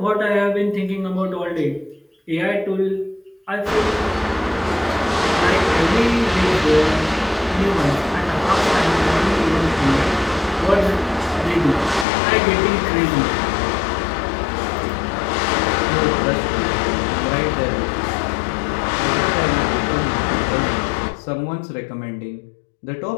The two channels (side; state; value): right; drops out; at 12.1 s